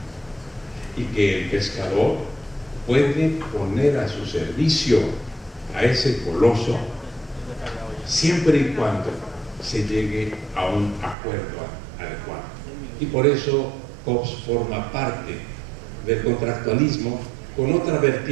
y que el pescador puede poner a su servicio a ese coloso siempre y cuando se llegue a un acuerdo adecuado. Y por eso Hobbes forma parte del contractualismo con otra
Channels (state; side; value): drops out; left; at 11.2 s